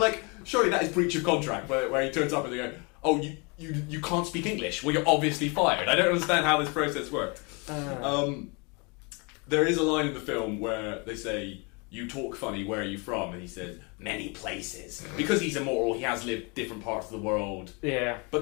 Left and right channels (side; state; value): right; quieter; 31.2 dB